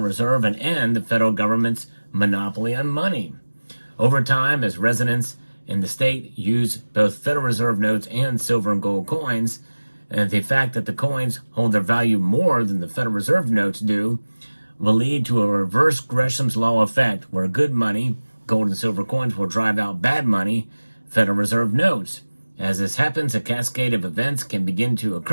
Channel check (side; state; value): both; inverted; correlation -1.00